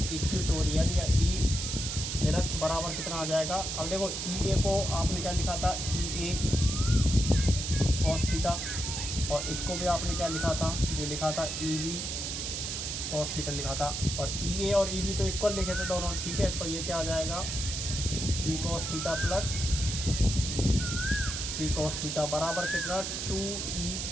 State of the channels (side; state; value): right; noise; hiss, 3 dB below the sound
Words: इक्वेटोरियल या ई निरक्ष बराबर कितना आ जाएगा। अब देखो ई ए को आपने क्या लिखा था, ई ए cos थीटा, और इसको भी आपने क्या लिखा था, ये लिखा था ई बी cos थीटा लिखा था। और ई ए और ई बी तो इक्वल लिखे थे दोनों। ठीक है, तो ये क्या आ जाएगा, ई cos theta plus three cos theta बराबर कितना, 2e